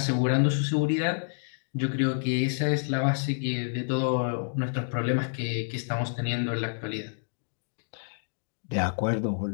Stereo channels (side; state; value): right; silent; digital silence